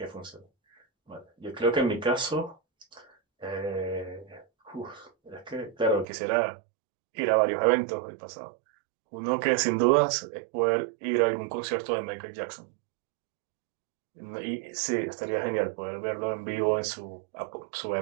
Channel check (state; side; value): drops out; left; at 6.1 s